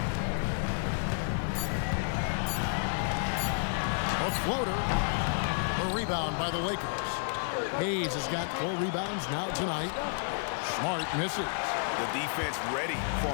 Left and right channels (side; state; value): right; silent; digital silence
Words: A floater. A rebound by the Lakers. Hayes has got 4 rebounds now tonight. Smart misses. The defense ready for